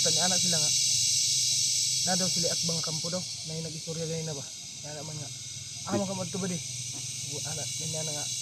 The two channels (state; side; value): identical; both; correlation 1.00